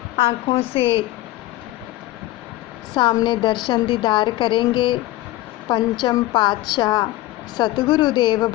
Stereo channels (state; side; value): quieter; right; 17.2 dB